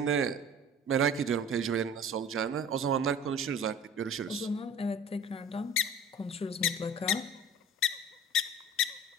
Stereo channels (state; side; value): normal; both; correlation 0.42